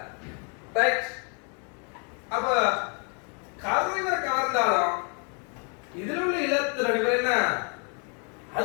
ரைட். அப்ப கரு இவரை கவர்ந்தாலும் இதுல உள்ள இலத்திரன் இவர் என்ன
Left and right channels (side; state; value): right; quieter; 38.5 dB